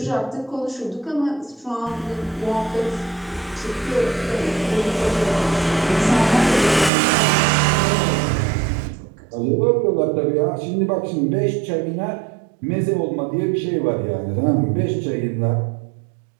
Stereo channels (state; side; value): drops out; left; at 6.9 s